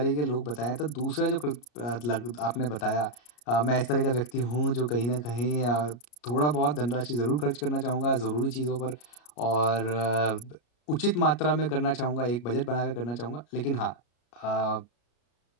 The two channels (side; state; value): right; late; 34 ms